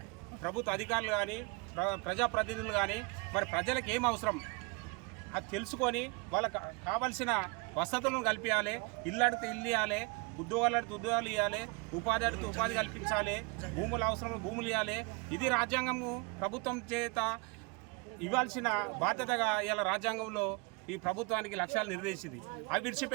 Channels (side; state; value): left; quieter; 28.9 dB